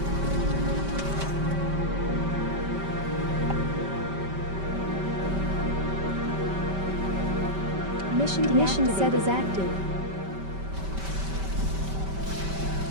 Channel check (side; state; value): left; late; 5.2 ms